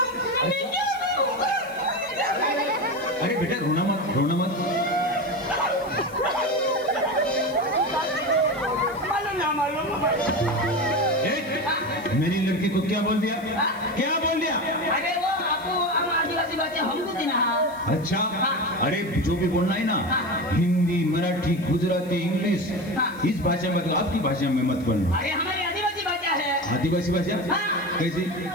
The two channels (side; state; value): left; noise; hiss, 24 dB below the sound